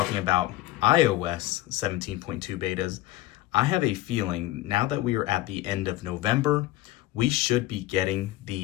about iOS 17.2 betas, I have a feeling now that we are at the end of November, we should be getting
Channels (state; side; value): quieter; right; 16.3 dB